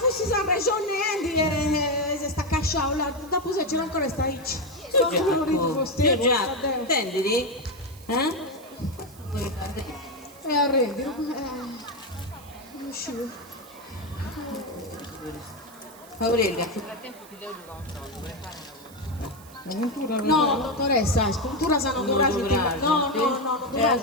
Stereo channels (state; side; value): noise; right; hiss, 22 dB below the sound